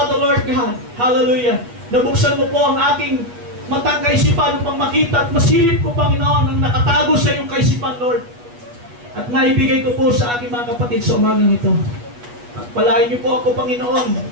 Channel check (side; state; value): left; late; 8.3 ms